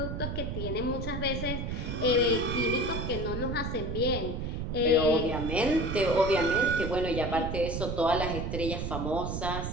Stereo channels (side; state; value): right; noise; rumble, 4 dB below the sound